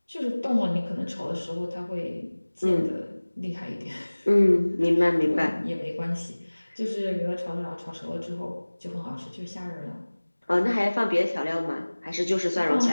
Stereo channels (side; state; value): both; inverted; correlation -1.00